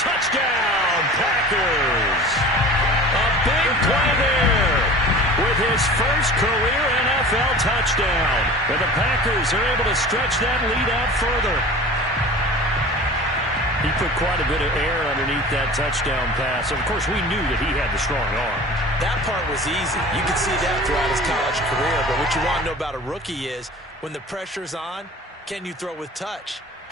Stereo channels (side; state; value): both; normal; correlation 0.40